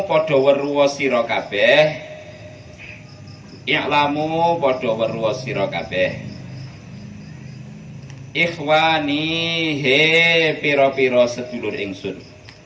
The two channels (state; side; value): identical; both; correlation 1.00